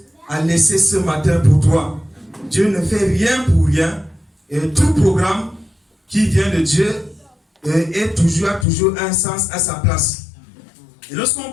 à laisser ce matin pour toi. Dieu ne fait rien pour rien. Et tout programme qui vient de Dieu a toujours un sens à sa place. Et lorsqu'on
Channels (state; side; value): drops out; right; at 8.7 s